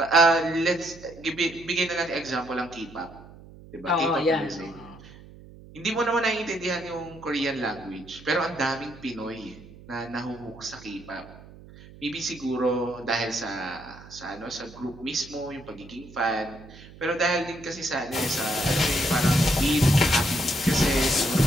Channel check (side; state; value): right; noise; hum, 19 dB below the sound